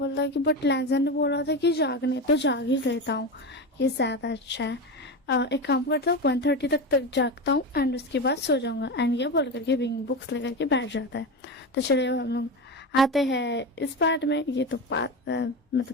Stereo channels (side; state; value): both; normal; correlation 0.21